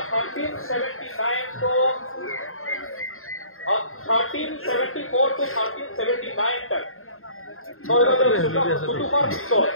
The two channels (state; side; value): late; right; 0.61 ms